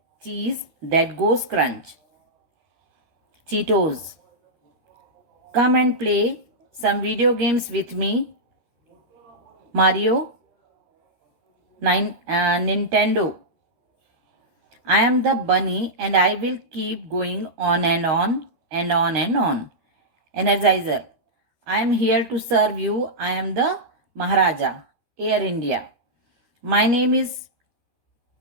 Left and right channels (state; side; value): late; left; 13 ms